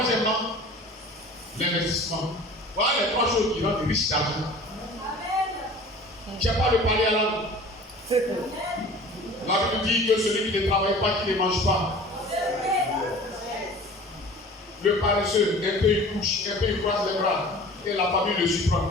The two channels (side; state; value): both; normal; correlation 0.43